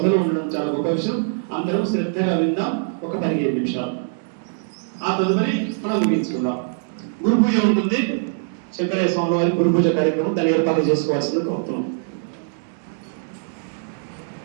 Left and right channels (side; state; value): left; silent; digital silence